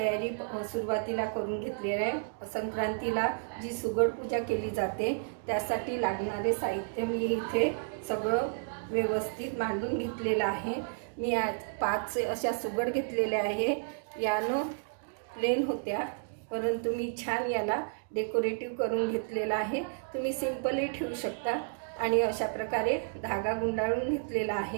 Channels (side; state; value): left; silent; digital silence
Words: सुरुवातीला करून घेतली आहे। संक्रांतीला जी सुगड पूजा केली जाते त्यासाठी लागणारे साहित्य मी इथे सगळं व्यवस्थित मांडून घेतलेलं आहे। मी आज 5 अशा सुगड घेतलेल्या आहे। यानं प्लेन होत्या, परंतु मी छान याला डेकोरेटिव्ह करून घेतलेला आहे। तुम्ही सिंपलही ठेवू शकता। आणि अशा प्रकारे धागा गुंडाळून घेतलेला